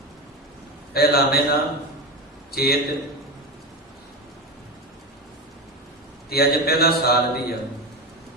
ਪਹਿਲਾ ਮਹੀਨਾ ਚੇਤ, ਤੇ ਅੱਜ ਪਹਿਲਾ ਸਾਲ ਵੀ ਆ।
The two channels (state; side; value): normal; both; correlation 0.19